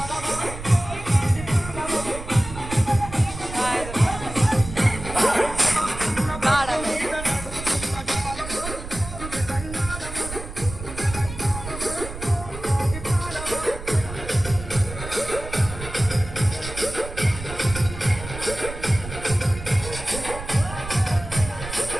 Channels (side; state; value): right; noise; rumble, 10 dB below the sound